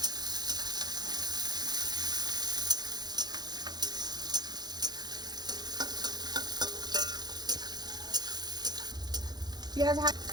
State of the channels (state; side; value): late; left; 0.20 ms